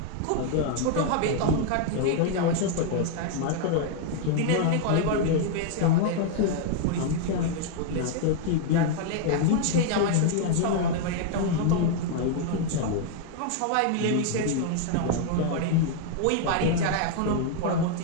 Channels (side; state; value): both; different; correlation 0.00